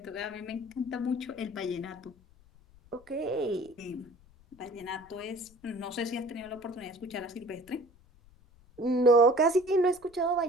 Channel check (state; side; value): noise; left; rumble, 27 dB below the sound